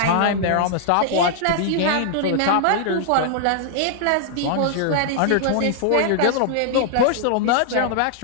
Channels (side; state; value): both; different; correlation -0.01